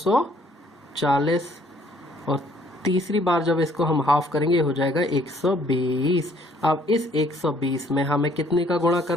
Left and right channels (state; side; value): normal; both; correlation 0.62